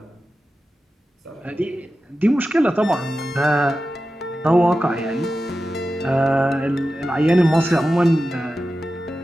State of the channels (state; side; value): normal; both; correlation 0.93